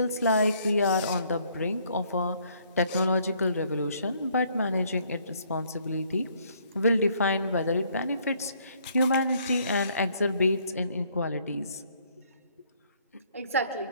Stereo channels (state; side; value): inverted; both; correlation -0.65